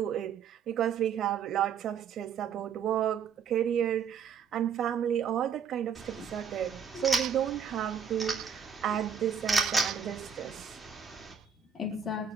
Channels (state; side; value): quieter; left; 7.0 dB